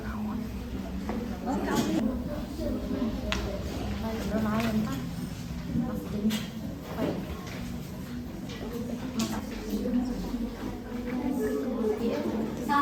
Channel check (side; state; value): both; identical; correlation 1.00